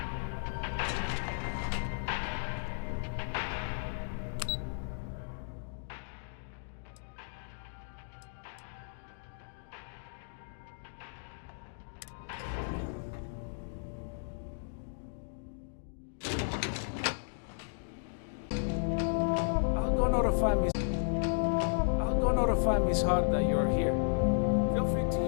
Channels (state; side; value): silent; right; digital silence